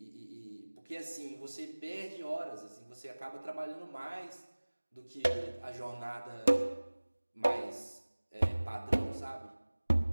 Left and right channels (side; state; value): both; inverted; correlation -1.00